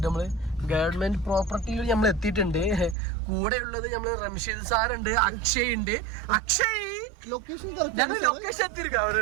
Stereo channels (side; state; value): left; drops out; at 3.0 s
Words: നമ്മള് ഗവൺമെന്റ് പ്രോപ്പർട്ടിയിൽ നമ്മൾ എത്തിയിട്ടുണ്ട്. കൂടെ ഉള്ളത് നമ്മള് റംഷീദ് സാറുണ്ട്, അക്ഷയ് ഉണ്ട്. അക്ഷയ് ഞങ്ങൾ ലൊക്കേഷൻ എത്തിയിരിക്കാം,